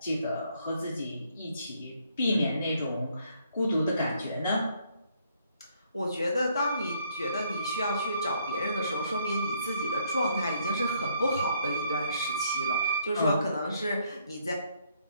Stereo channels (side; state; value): both; inverted; correlation -0.69